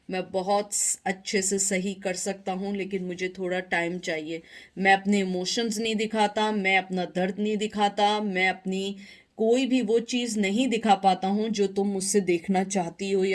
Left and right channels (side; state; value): both; identical; correlation 1.00